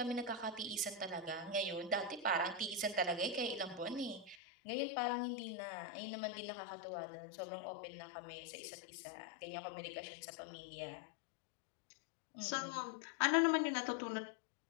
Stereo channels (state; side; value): drops out; right; at 4.4 s